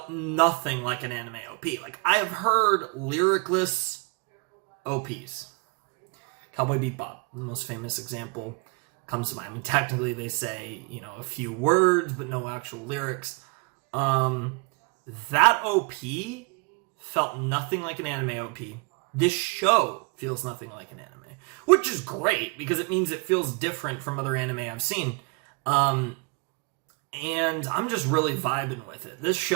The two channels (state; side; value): quieter; left; 33.1 dB